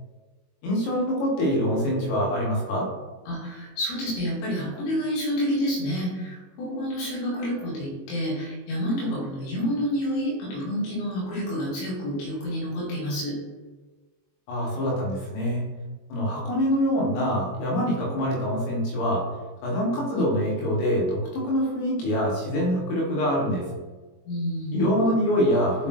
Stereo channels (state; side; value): late; right; 22 ms